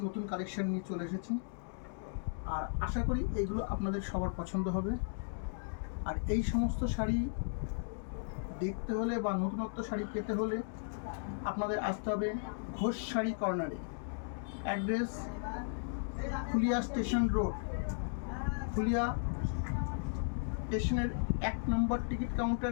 নতুন কালেকশন নিয়ে চলে এসেছি, আর আশা করি এইগুলো আপনাদের সবার পছন্দ হবে। আর এই সমস্ত শাড়ি দেখতে হলে বা নতুনত্ব শাড়ি পেতে হলে আপনাদের আসতে হবে ঘোষ শাড়ি কর্নারে। Address Phulia station road, Phulia স্টেশনের 1 নম্বর টিকিট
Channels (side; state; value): right; silent; digital silence